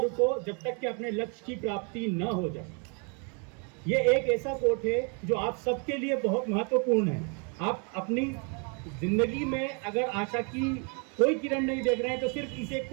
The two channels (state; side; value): quieter; left; 37.0 dB